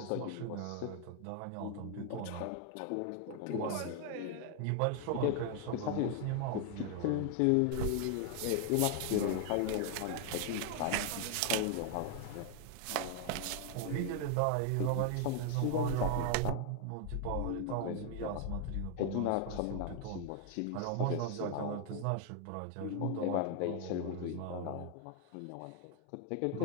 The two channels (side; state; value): both; different; correlation 0.00